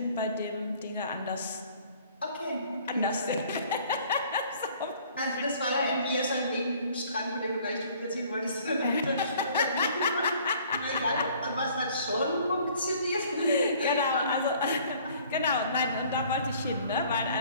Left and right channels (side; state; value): both; inverted; correlation -0.55